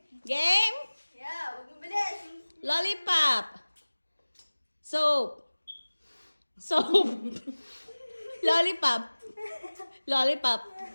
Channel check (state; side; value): inverted; both; correlation -1.00